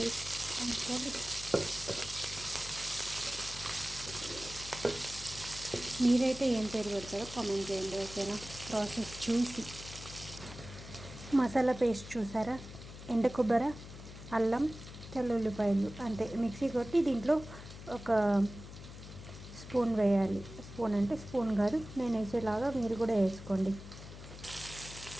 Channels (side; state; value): left; noise; hum, 13 dB below the sound